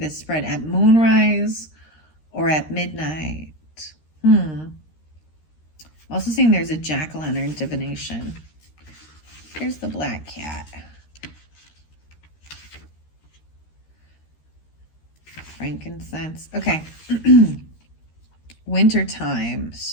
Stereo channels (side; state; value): right; late; 13 ms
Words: spread at moonrise or at midnight. Also seeing there's a jack-o'-lantern divination. Here's the black cat. Frankincense. Okay. Wintertime.